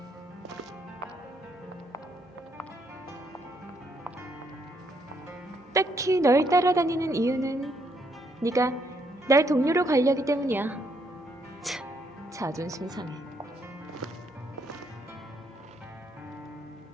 딱히 널 따라다니는 이유는 네가 날 동료로 관리하기 때문이야. 참, 자존심 상해.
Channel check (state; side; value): normal; both; correlation 0.73